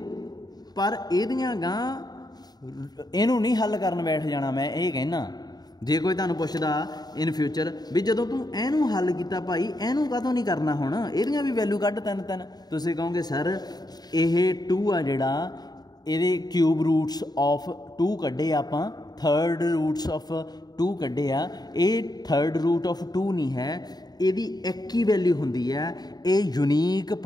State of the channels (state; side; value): late; right; 0.19 ms